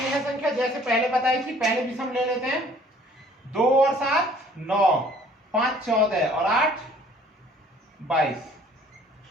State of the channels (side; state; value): both; normal; correlation 0.56